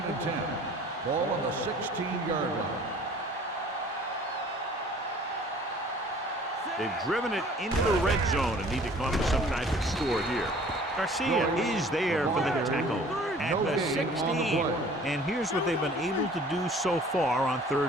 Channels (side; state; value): both; normal; correlation 0.51